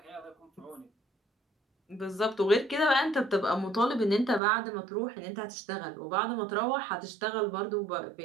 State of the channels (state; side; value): drops out; left; at 4.4 s